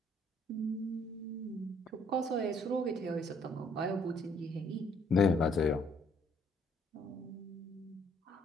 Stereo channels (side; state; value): both; normal; correlation 0.65